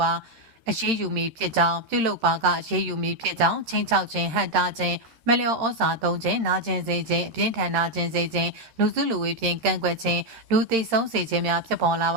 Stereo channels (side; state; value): left; late; 13 ms